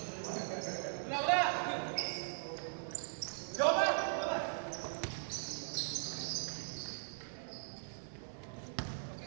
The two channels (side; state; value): left; silent; 51 dB below the other